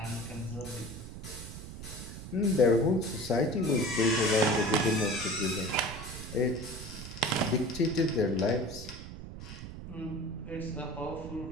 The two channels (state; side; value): noise; right; rumble, 11 dB below the sound